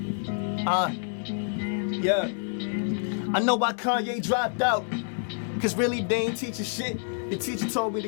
Yeah. I know why Kanye dropped out. Cause really they ain't teaching shit. The teacher told me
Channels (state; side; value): silent; right; 60 dB below the other